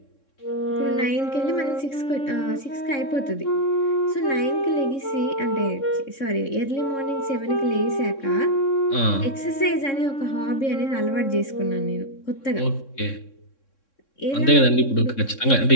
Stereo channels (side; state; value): right; late; 3.6 ms